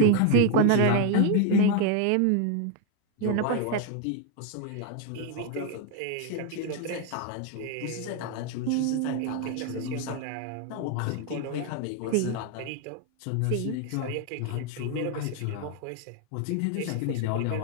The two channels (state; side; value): different; both; correlation 0.01